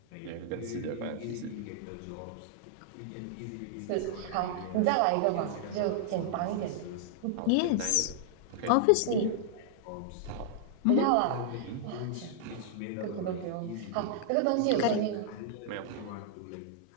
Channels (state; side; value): different; both; correlation -0.01